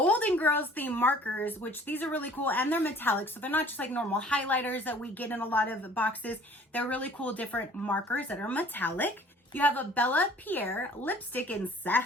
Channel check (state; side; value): normal; both; correlation 0.51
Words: Girls theme markers, which these are really cool, and they're metallic, so they're not just like normal highlighters that we get in a lot of boxes. They're really cool different markers that are metallic. You have a Bella Pierre lipstick in